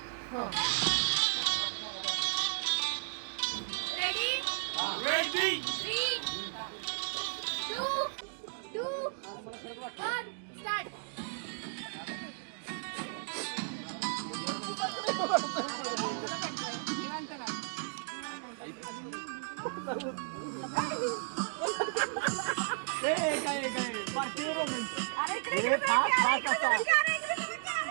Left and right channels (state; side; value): silent; left; digital silence